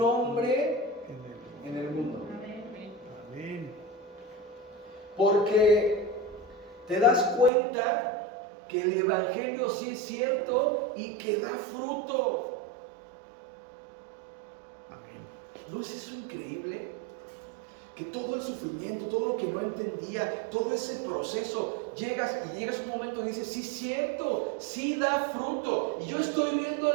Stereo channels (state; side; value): drops out; left; at 7.5 s